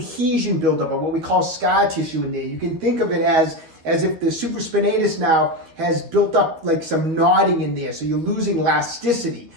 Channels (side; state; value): left; late; 13 ms